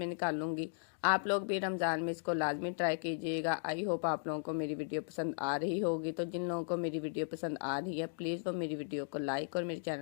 निकाल लूँगी। आप लोग भी रमज़ान में इसको लाजमी ट्राई कीजिएगा। आई होप आप लोगों को मेरी वीडियो पसंद आ रही होगी। तो जिन लोगों को मेरी वीडियो पसंद आ रही है प्लीज़ वो मेरी वीडियो को लाइक और मेरे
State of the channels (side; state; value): right; silent; digital silence